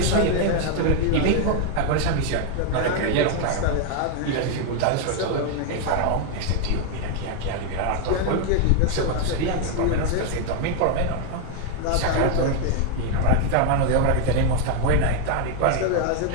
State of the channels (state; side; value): different; both; correlation 0.01